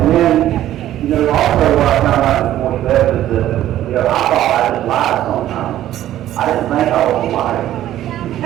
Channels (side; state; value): left; quieter; 12.9 dB